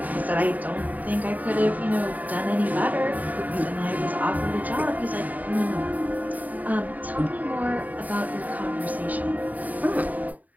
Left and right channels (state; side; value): late; left; 0.077 ms